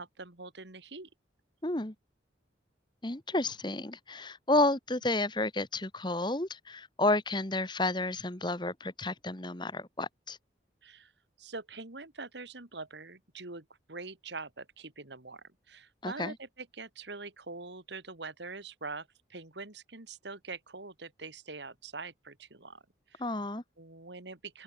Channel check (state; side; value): normal; both; correlation 0.31